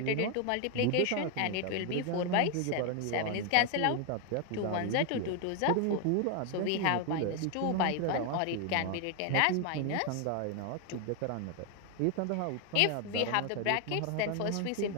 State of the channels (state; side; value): different; both; correlation 0.00